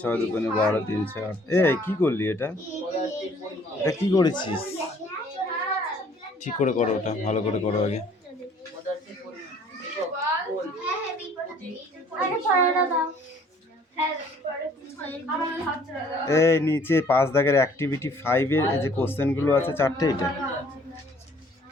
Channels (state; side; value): normal; both; correlation 0.57